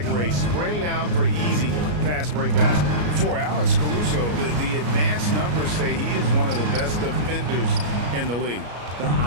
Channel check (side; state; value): left; late; 33 ms